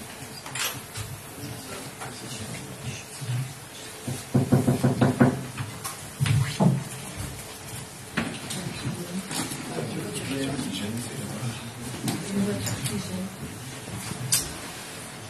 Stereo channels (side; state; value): both; identical; correlation 1.00